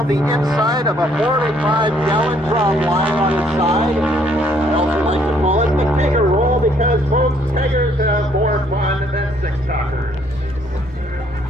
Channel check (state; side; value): normal; both; correlation 0.65